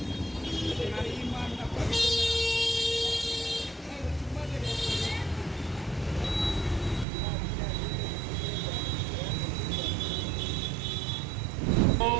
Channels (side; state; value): left; drops out; at 7.1 s